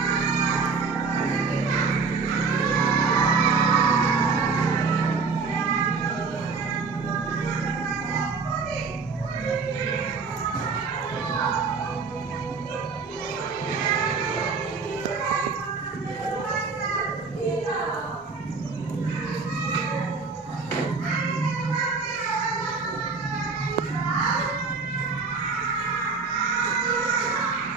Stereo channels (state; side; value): quieter; left; 4.7 dB